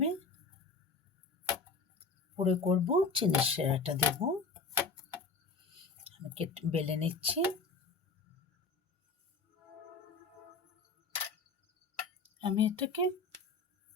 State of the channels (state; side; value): quieter; right; 4.3 dB